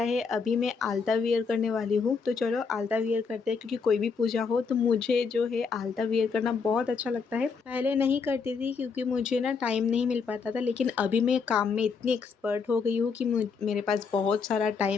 है, अभी मैं आलता वियर करने वाली हूँ। तो चलो आलता वियर करते हैं, क्योंकि कोई भी पूजा हो तो मुझे जो है आलता वियर करना बहुत अच्छा लगता है। पहले नहीं करती थी क्योंकि मुझे ना टाइम नहीं मिल पाता था, लेकिन अभी मैं काम में इतनी एक्सपर्ट हो गई हूँ कि मेरे पास बहुत सारा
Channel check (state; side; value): quieter; right; 5.4 dB